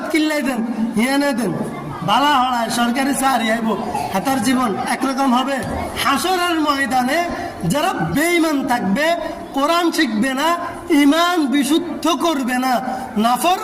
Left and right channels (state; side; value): identical; both; correlation 1.00